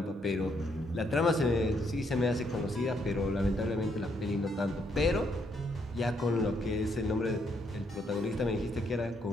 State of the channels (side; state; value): both; normal; correlation 0.74